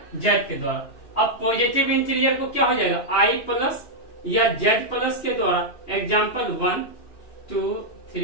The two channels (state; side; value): late; right; 2.8 ms